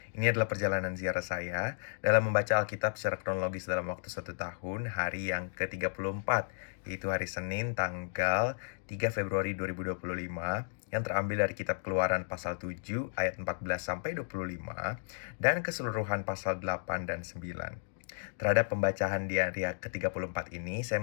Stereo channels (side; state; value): right; silent; digital silence